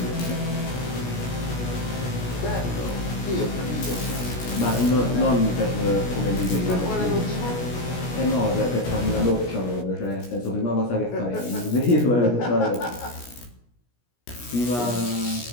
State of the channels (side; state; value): right; late; 17 ms